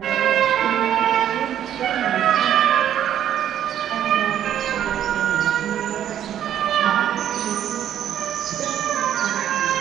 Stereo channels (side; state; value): left; quieter; 10.6 dB